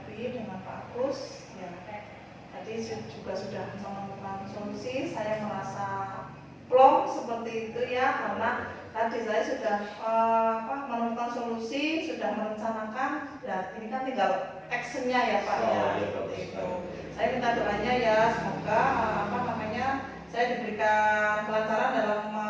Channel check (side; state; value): both; identical; correlation 1.00